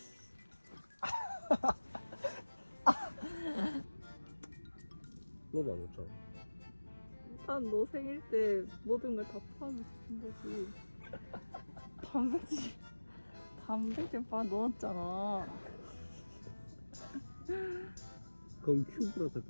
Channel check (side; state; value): both; inverted; correlation -1.00